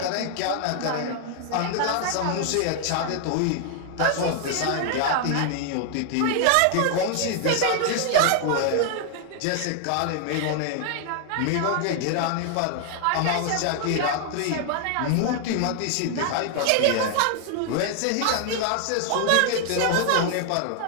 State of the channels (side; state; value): both; different; correlation 0.00